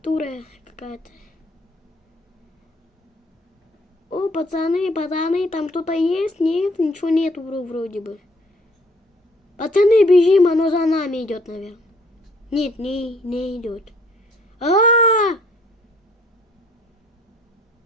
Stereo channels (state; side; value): normal; both; correlation 0.60